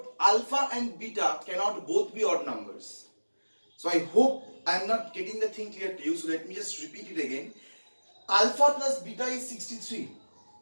alpha and beta cannot both be odd numbers. So I hope I am not getting the thing clear to you. So let me just repeat it again. Alpha plus beta is 63.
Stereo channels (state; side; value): inverted; both; correlation -1.00